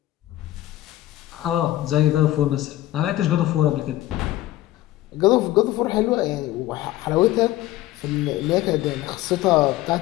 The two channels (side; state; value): right; quieter; 15.2 dB